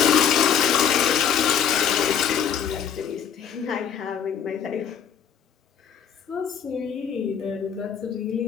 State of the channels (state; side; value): quieter; right; 8.2 dB